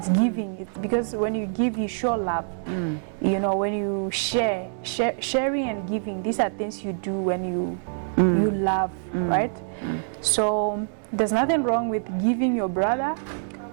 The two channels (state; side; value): silent; left; 62 dB below the other